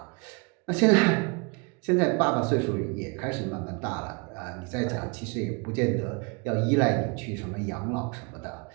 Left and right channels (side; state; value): left; quieter; 31.7 dB